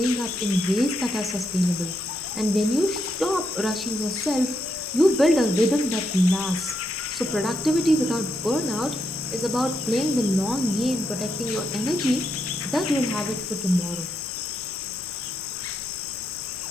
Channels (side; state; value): both; normal; correlation 0.81